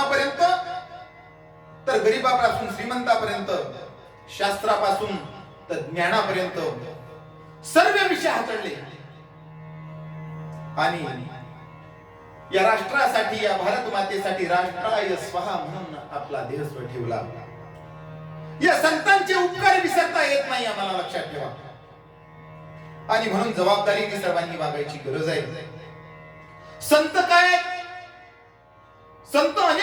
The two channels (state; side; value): identical; both; correlation 1.00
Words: तर गरीबापासून श्रीमंतापर्यंत, शास्त्रापासून तर ज्ञानापर्यंत सर्व विषय हाताळले. आणि या राष्ट्रासाठी, या भारत मातेसाठी राष्ट्राय स्वहा म्हणून आपला देह स्व ठेवला. या संतांचे उपकार विसरता येत नाही, आम्हाला लक्षात ठेवा. आणि म्हणून जबाबदारीने सर्वांनी वागायची गरज आहे. संत काय? संत